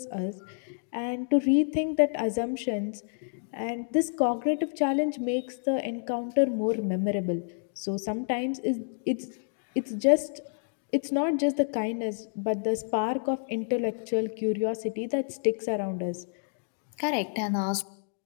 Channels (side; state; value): right; silent; digital silence